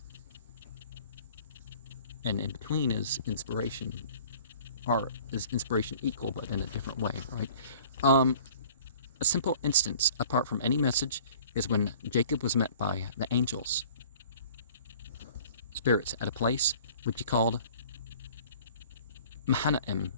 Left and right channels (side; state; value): both; inverted; correlation -0.49